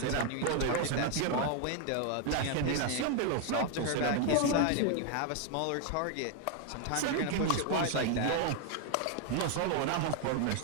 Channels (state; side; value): different; both; correlation 0.01